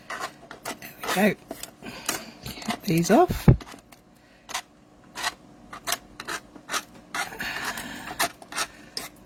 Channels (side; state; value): both; identical; correlation 1.00